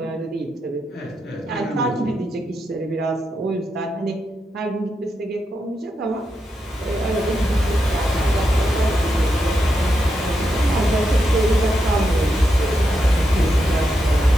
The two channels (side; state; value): both; normal; correlation 0.85